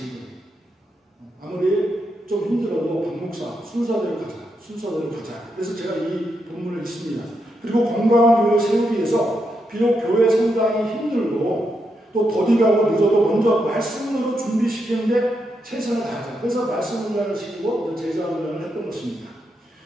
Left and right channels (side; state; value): both; normal; correlation 0.82